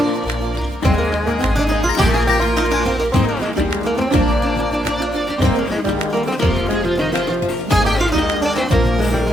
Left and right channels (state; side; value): normal; both; correlation 0.79